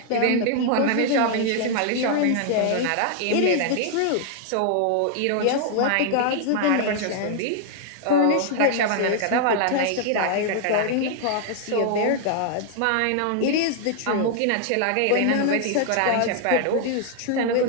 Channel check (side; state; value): both; different; correlation 0.00